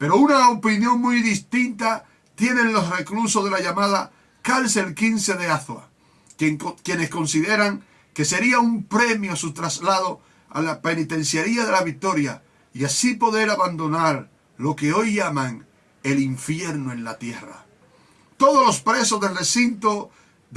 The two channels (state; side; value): identical; both; correlation 1.00